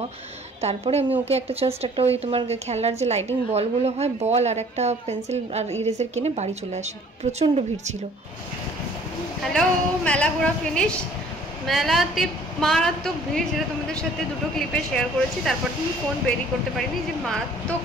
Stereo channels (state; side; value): normal; both; correlation 0.55